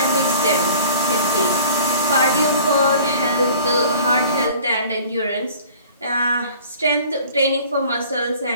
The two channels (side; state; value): both; inverted; correlation -0.48